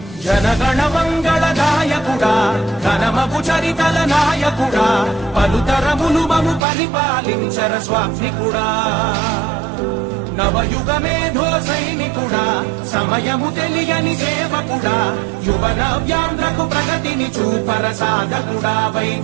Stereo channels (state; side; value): drops out; left; at 6.7 s